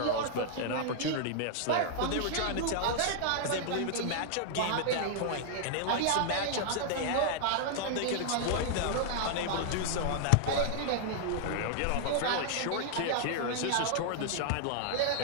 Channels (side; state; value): both; different; correlation -0.01